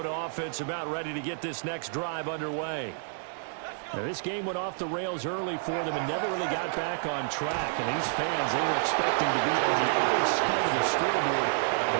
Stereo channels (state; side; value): silent; left; digital silence